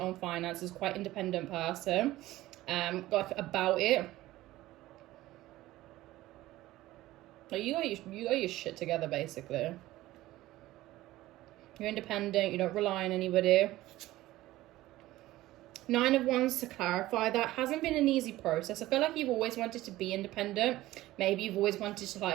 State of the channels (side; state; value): left; quieter; 16.6 dB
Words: own finances, quite independent person. Like about it. Like you got your shit together, basically. You're independent, you don't rely on anybody. 9 of Wands, to clarify, that hasn't been an easy process. I feel like you've always wanted to be independent. Maybe you've always wanted to